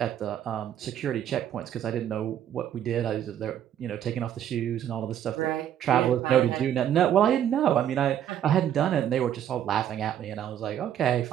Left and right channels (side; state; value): left; quieter; 10.4 dB